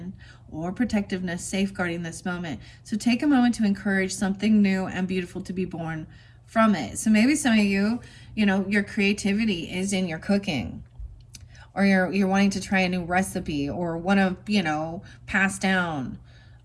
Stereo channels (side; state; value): both; identical; correlation 1.00